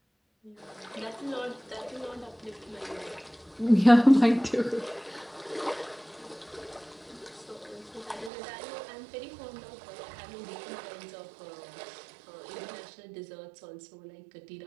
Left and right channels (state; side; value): drops out; left; at 8.3 s